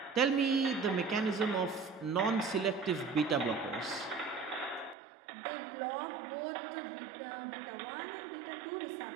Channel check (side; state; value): left; drops out; at 5.0 s